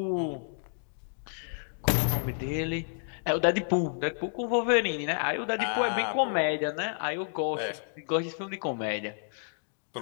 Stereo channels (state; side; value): silent; right; digital silence